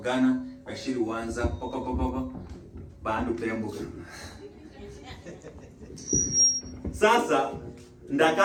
bashiri wanza poko bandu pembuka sasa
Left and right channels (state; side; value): identical; both; correlation 1.00